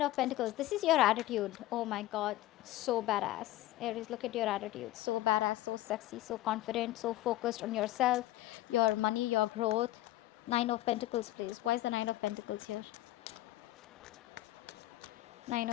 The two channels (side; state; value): right; quieter; 15.8 dB